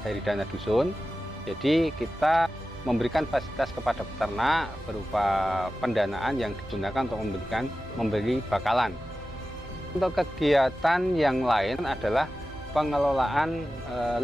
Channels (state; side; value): normal; both; correlation 0.94